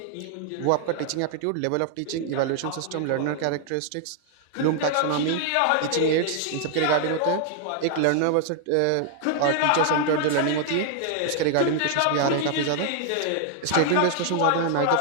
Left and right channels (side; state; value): both; different; correlation 0.00